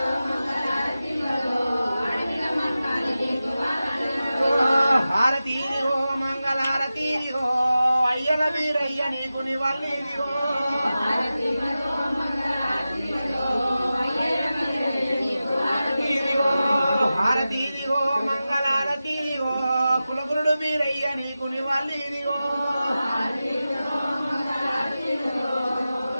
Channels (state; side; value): inverted; both; correlation -0.94